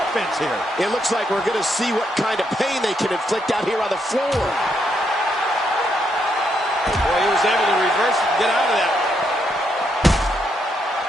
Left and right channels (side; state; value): both; normal; correlation 0.77